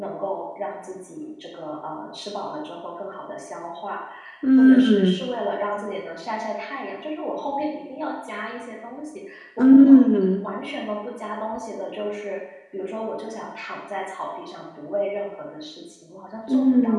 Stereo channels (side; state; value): both; identical; correlation 1.00